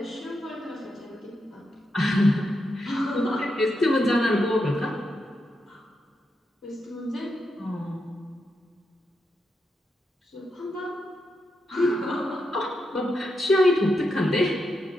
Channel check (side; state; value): both; normal; correlation 0.85